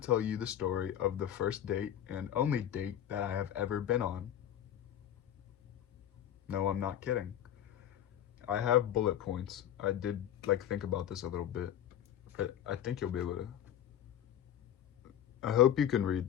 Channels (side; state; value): right; quieter; 10.7 dB